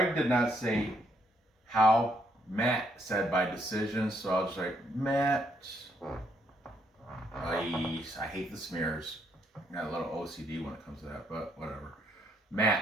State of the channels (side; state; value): both; normal; correlation 0.72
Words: did not say how. Matt said by decision, so I'll just like, Matt. I hate the smears. Got a little OCD when it comes to that, but whatever.